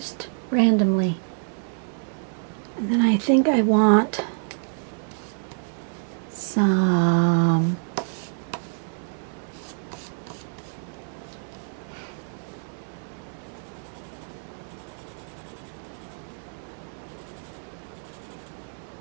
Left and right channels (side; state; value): left; silent; 60 dB below the other